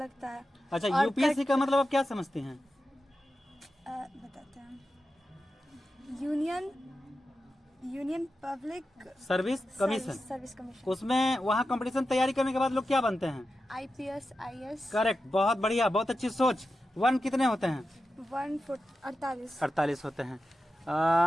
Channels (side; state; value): both; normal; correlation 0.91